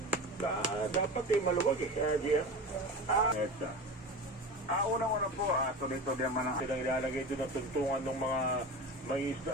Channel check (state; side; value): normal; both; correlation 0.29